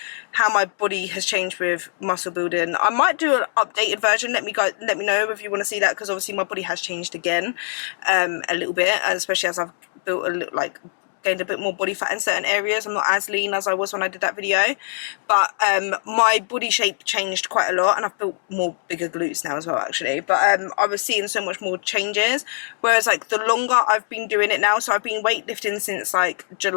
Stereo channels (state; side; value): silent; right; digital silence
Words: how my body has changed with muscle building, I might do an updated version. Let me know if you want to see that, because obviously my body has changed again a little bit, and especially as I've built gained a bit more body fat in certain areas. I'm not as lean as I was when I did that video, but my body shape changed quite a lot, and I've built more bigger glutes now as well, actually. But I was seeing so much more changes, whereas like the longer I've been doing it now, so I've been weightlifting since like